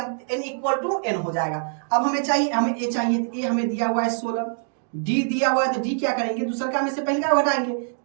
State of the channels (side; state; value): left; silent; digital silence